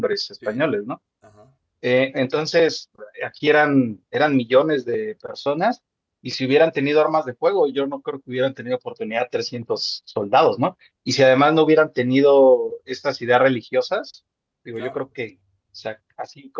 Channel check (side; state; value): both; identical; correlation 1.00